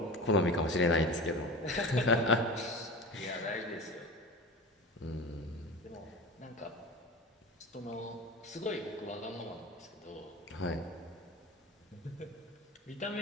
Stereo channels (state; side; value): normal; both; correlation 0.31